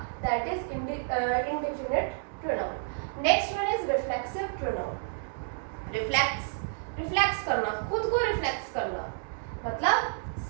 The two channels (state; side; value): silent; left; digital silence